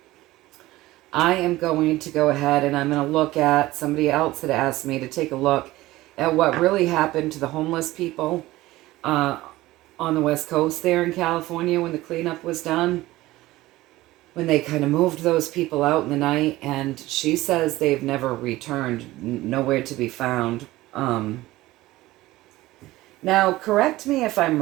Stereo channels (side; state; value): left; quieter; 17.7 dB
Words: am going to go ahead and I'm going to look at, somebody else had asked me to take a look at what really happened to the homeless people on the West Coast there in California when the cleanup was done. When they kind of moved those people out in the night, and she says they've never returned, nowhere to be found. Now, correct me if I'm